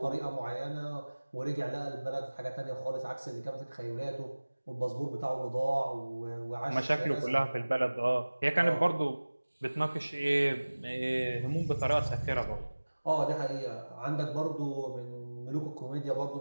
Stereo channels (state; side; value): inverted; both; correlation -1.00